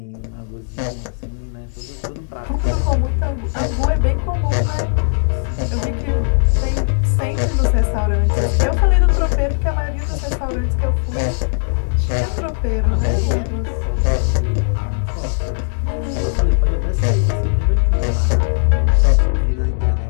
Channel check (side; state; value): right; silent; 67 dB below the other